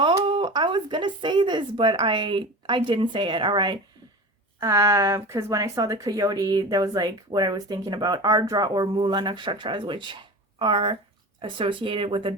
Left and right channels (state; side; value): normal; both; correlation 0.32